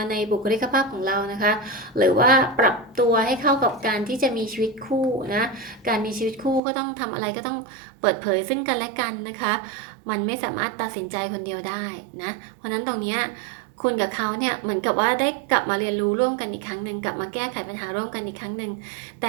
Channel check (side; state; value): left; drops out; at 6.6 s